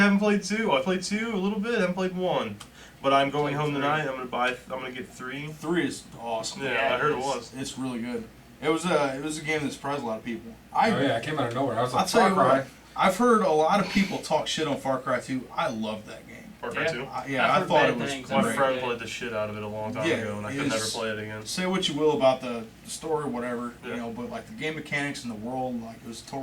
played 2. I played 2 a little bit, haven't played 1. But I'm going Played home 3. tonight. I'm gonna get 3. 3 is awesome. Yeah, Yeah, I heard it it is. was. It's really good. It was a game that surprised a lot of people. Oh yeah, it came out of nowhere. I was I'll like, tell Far you Cry. what, I've heard a lot of people talk shit on Far Cry 2. I love that game. Far Cry Yeah. 2. I've I heard thought bad it was things. My great. friend played the shit out of it a long time Yeah, ago, and I could never it's- play it again. Say what you will about the story, or whatever, Yeah. but like the game mechanics and the world, like it was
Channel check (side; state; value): both; identical; correlation 1.00